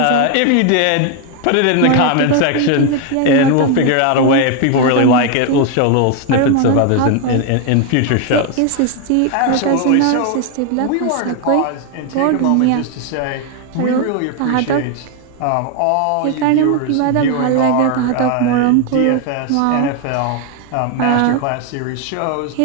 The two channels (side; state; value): both; different; correlation 0.01